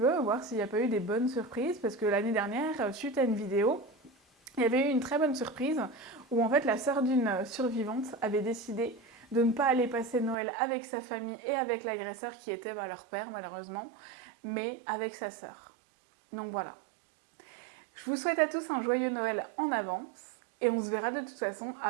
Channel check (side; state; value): left; drops out; at 10.4 s